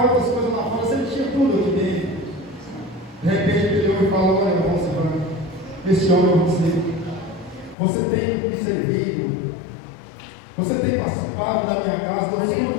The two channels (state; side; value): drops out; right; at 7.8 s